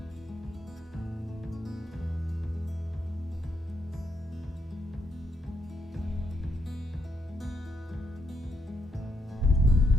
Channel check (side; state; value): both; normal; correlation 0.79